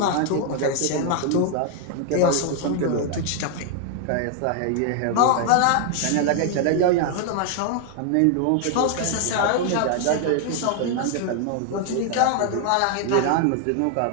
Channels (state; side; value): different; both; correlation 0.00